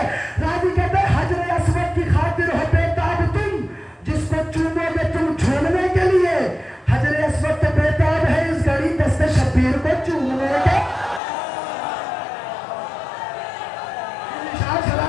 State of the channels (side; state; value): right; drops out; at 11.2 s